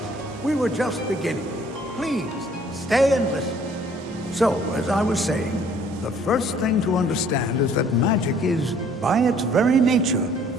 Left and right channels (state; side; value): normal; both; correlation 0.58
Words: were just beginning. Please, stay and listen. So, as I was saying, the first thing to understand is that magic is, by its very nature,